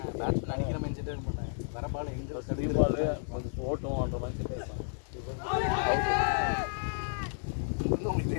அடிக்கிற மைண்ட் செட்டே பண்ணேன். வர பால் எங்கே சரி பால் கொஞ்சம் ஓட்டும் அந்த மைண்ட் செட்டு இருப்பான். உங்களுக்கு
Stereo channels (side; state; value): right; silent; 55 dB below the other